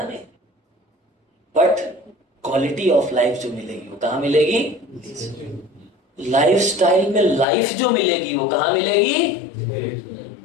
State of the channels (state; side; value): drops out; right; at 7.5 s